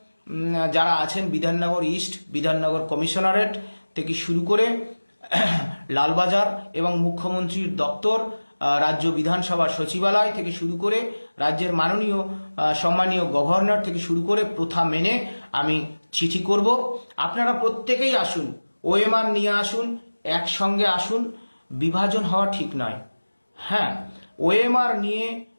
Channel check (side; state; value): both; inverted; correlation -1.00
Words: যারা আছেন, বিধাননগর ইস্ট, বিধাননগর কমিশনারেট থেকে শুরু করে লালবাজার এবং মুখ্যমন্ত্রীর দপ্তর, রাজ্য বিধানসভার সচিবালয় থেকে শুরু করে রাজ্যের মাননীয় সম্মানীয় গভর্নর থেকে শুরু করে প্রথা মেনে আমি চিঠি করব। আপনারা প্রত্যেকেই আসুন, ওএমআর নিয়ে আসুন, একসঙ্গে আসুন। বিভাজন হওয়া ঠিক নয়। হ্যাঁ, ওএমআর নিয়ে